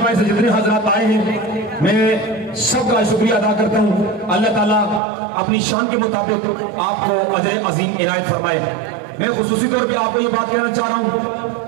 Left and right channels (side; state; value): left; drops out; at 5.0 s